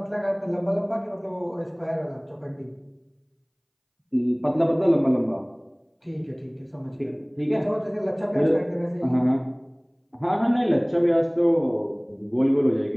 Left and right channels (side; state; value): both; identical; correlation 1.00